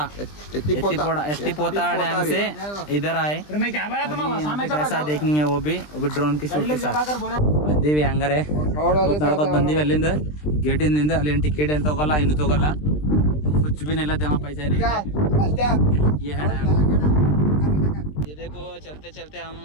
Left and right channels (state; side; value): late; right; 20 ms